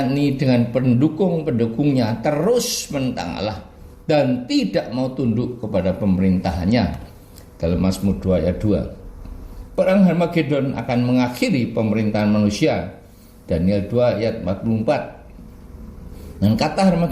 ini dengan pendukung-pendukungnya terus menentang Allah dan tidak mau tunduk kepada pemerintahannya. Dalam Mazmur 2 ayat 2. Perang Harmagedon akan mengakhiri pemerintahan manusia. Daniel 2 ayat 44. Dan kata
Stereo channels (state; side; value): identical; both; correlation 1.00